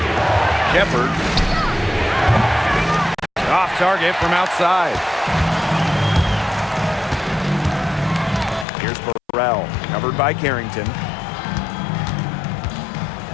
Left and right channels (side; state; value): right; drops out; at 8.7 s